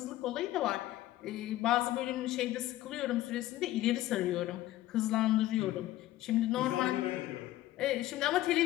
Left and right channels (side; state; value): right; quieter; 15.3 dB